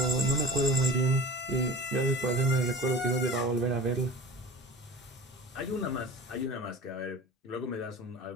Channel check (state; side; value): normal; both; correlation 0.38